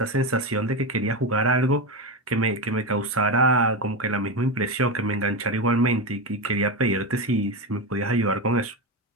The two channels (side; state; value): both; normal; correlation 0.15